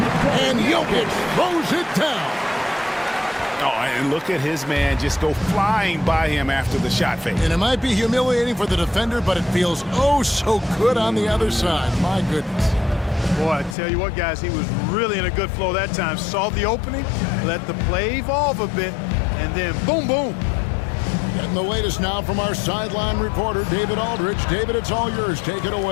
and Jokic throws it down. Oh, and look at his man just go flying by him after the shot fake. And it might be humiliating for the defender, but it feels oh so good on the other side. My goodness. Boy, I tell you what, guys, he was really in a good flow that time. Saw the opening, let the play evolve a bit, and then boom, boom. Getting the latest now from our sideline reporter, David Aldridge. David, it's all yours. Take it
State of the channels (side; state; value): right; drops out; at 13.8 s